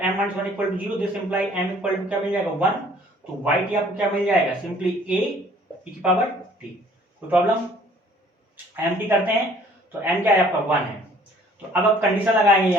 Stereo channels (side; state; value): both; normal; correlation 0.56